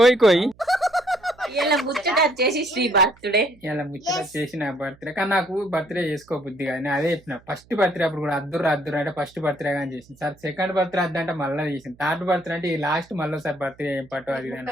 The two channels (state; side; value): noise; right; hum, 28 dB below the sound